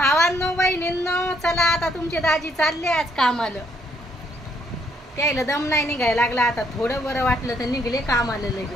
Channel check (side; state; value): both; normal; correlation 0.70